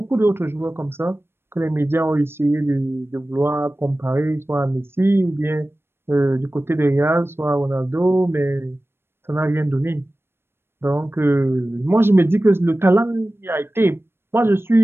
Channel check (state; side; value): late; left; 0.12 ms